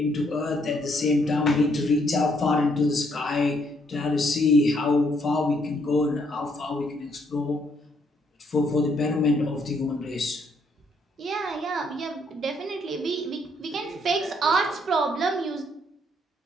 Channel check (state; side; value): normal; both; correlation 0.70